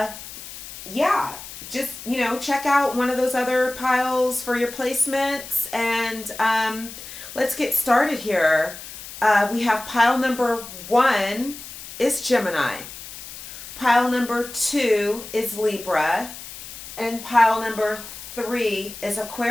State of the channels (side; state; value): left; noise; hiss, 13 dB below the sound